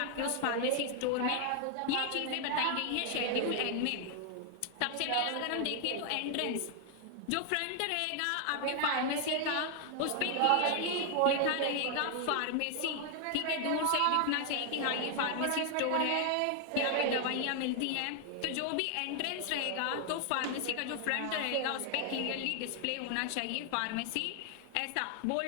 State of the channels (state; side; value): different; both; correlation 0.00